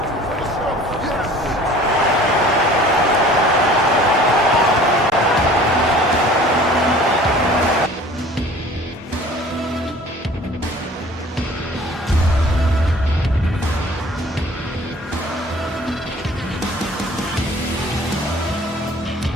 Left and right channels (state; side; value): normal; both; correlation 0.48